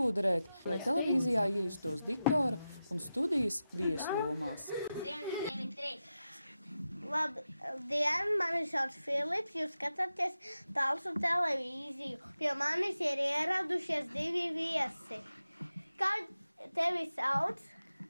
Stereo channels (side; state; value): both; inverted; correlation -0.92